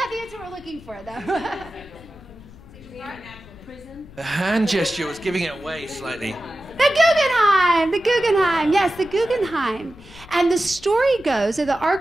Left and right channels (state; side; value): noise; left; rumble, 20 dB below the sound